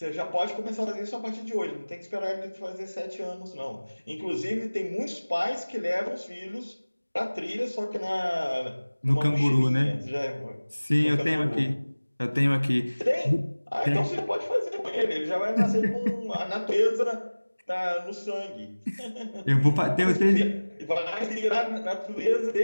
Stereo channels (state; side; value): inverted; both; correlation -1.00